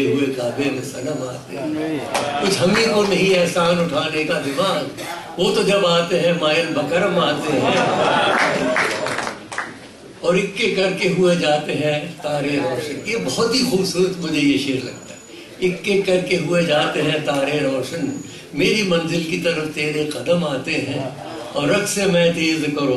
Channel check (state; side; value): identical; both; correlation 1.00